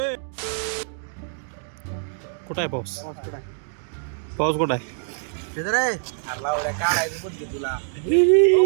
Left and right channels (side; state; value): left; silent; 62 dB below the other